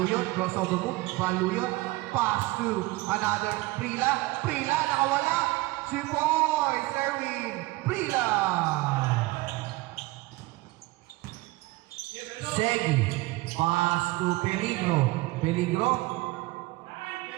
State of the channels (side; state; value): left; quieter; 20.7 dB